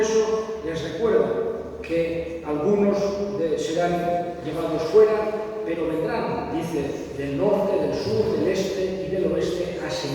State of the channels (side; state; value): both; identical; correlation 1.00